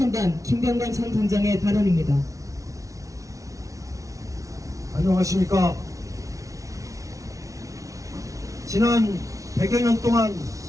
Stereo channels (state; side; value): late; left; 0.16 ms